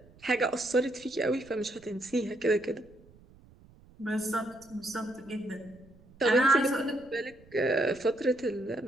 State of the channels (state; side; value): noise; right; rumble, 25 dB below the sound